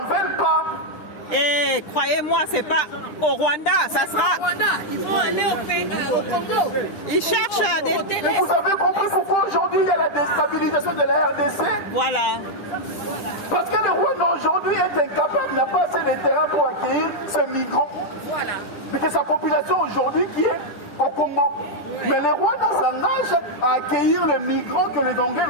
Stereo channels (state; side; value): late; right; 10 ms